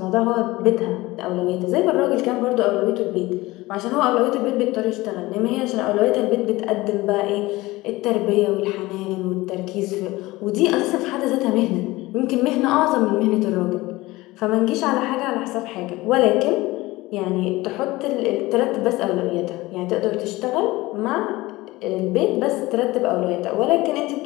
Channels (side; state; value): right; quieter; 19.7 dB